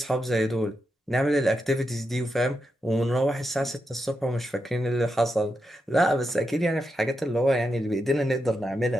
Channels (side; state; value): both; normal; correlation 0.85